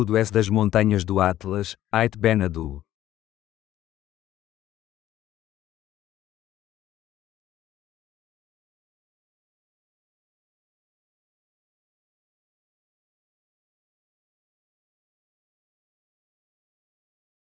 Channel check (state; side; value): quieter; right; 13.2 dB